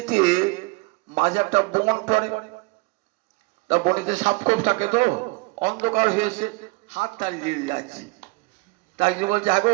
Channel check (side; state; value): left; quieter; 26.3 dB